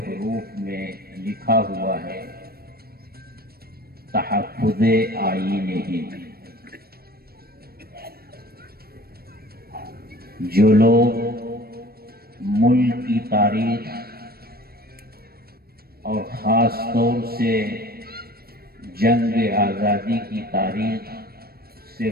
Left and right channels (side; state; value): left; late; 0.44 ms